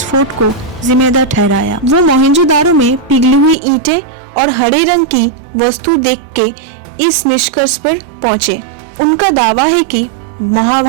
को जिम्मेदार ठहराया। वो मोहनजोदारो में पिघली हुई ईंटें और हरे रंग की वस्तु देख के इस निष्कर्ष पर पहुंचे। उनका दावा है कि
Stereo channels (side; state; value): left; drops out; at 3.6 s